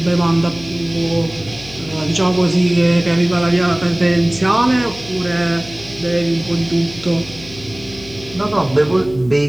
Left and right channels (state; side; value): noise; left; hum, 18 dB below the sound